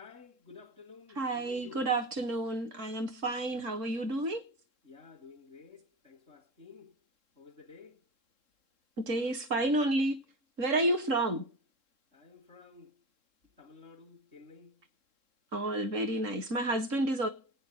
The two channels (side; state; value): left; late; 3.7 ms